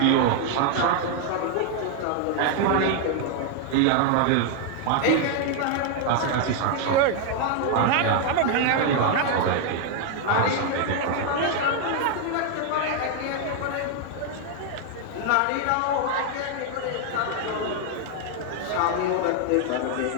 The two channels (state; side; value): different; both; correlation 0.00